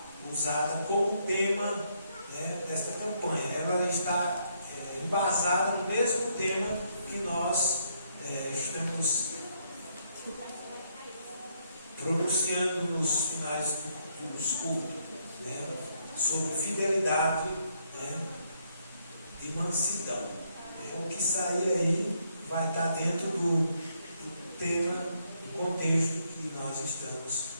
usada como tema desta campanha. Ela está embasada no mesmo tema que nós estamos pronunciando nos finais dos cultos. né, sobre fidelidade, né, e mansidão. O que sair aí vai estar dentro do tema, do contexto que nós estamos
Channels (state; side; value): inverted; both; correlation -0.73